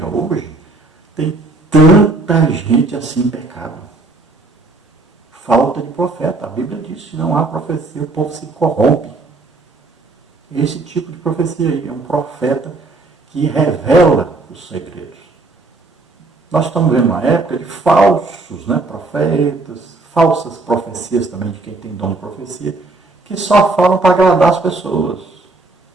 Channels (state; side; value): quieter; left; 3.3 dB